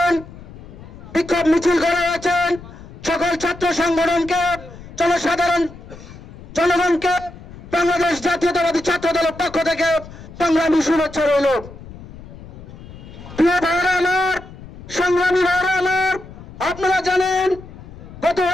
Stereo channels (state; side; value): noise; left; rumble, 16 dB below the sound